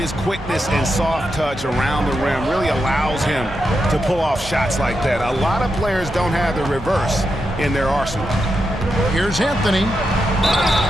quickness and soft touch around the rim really allows him to pull off shots like that. A lot of players don't have the reverse in their arsenal. Here's Anthony.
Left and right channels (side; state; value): both; normal; correlation 0.86